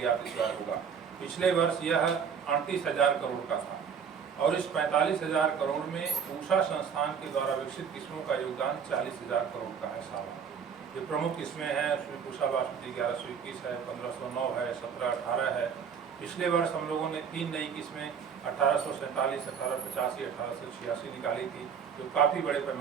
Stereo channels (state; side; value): quieter; left; 6.9 dB